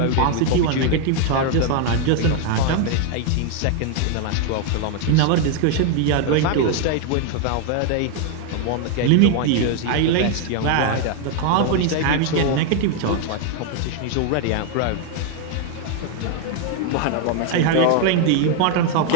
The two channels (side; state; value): both; different; correlation 0.00